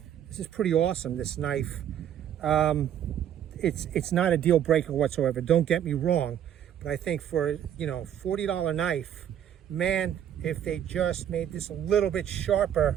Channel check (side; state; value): left; quieter; 10.0 dB